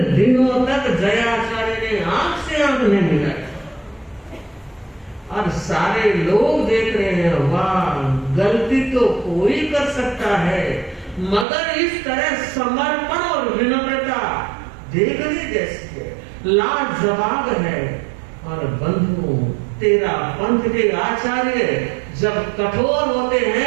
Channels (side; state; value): left; drops out; at 11.5 s